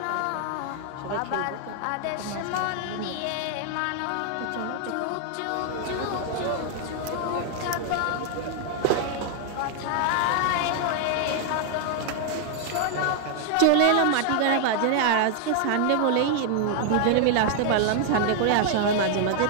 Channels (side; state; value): both; different; correlation 0.00